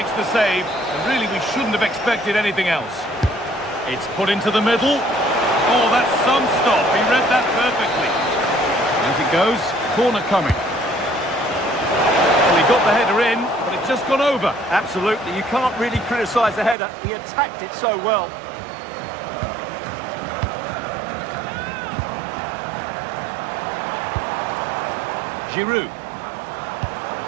the save. And really, we shouldn't have expected anything else. It's put into the middle. Oh, that's some stop. He read that perfectly. As it goes, corner coming. Well, he got the header in, but it's just gone over. Absolutely. You can't really criticise the header. He attacked it so well. Giroud.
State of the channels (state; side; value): drops out; left; at 16.8 s